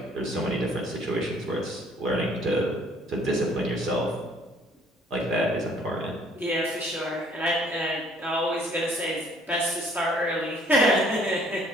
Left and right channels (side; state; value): both; normal; correlation 0.59